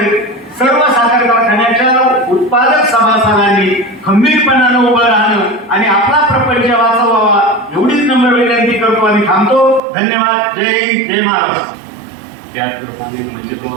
सर्व साखर कारखान्याच्या उत्पादक सभासदांनी खंबीरपणानं उभं राहणं आणि आपला प्रपंच वाचवावा एवढीच नम्र विनंती करतो आणि थांबतो. धन्यवाद. जय हिंद, जय महाराष्ट्र. त्याचप्रमाणे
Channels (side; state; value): left; drops out; at 9.8 s